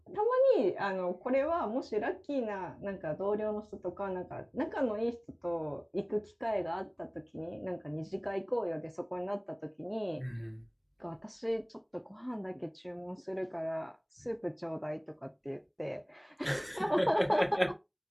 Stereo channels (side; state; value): both; identical; correlation 1.00